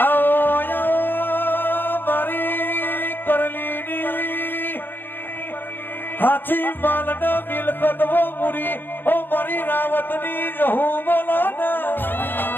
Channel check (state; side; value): late; right; 0.096 ms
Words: हाथी मालन मिलकत वो मुरी ओ मरी रावतनी जहू बोलाना